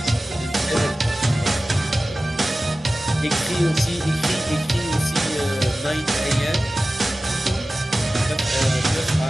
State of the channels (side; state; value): both; normal; correlation 0.96